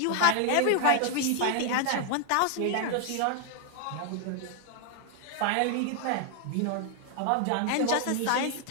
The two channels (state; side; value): different; both; correlation 0.00